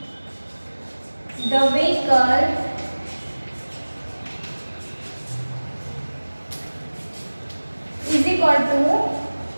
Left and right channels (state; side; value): inverted; both; correlation -1.00